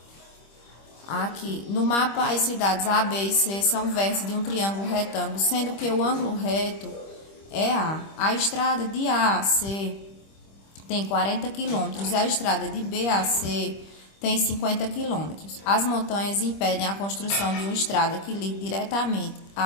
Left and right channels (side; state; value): right; late; 25 ms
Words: Aqui, no mapa, as cidades A, B e C são vértices de um triângulo retângulo, sendo que o ângulo reto é A. A estrada de A a C tem 40 quilômetros e a estrada de B a C tem 50 quilômetros. As montanhas impedem a construção de uma estrada que ligue diretamente